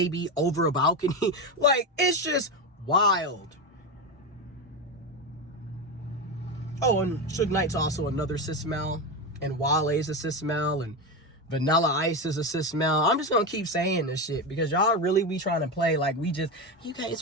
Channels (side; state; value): both; normal; correlation 0.16